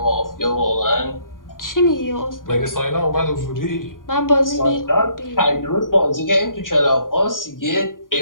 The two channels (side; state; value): right; late; 0.90 ms